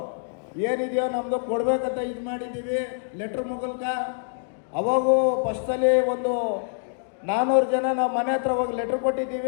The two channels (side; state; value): right; silent; digital silence